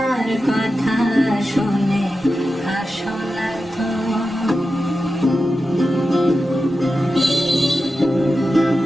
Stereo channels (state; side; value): normal; both; correlation 0.91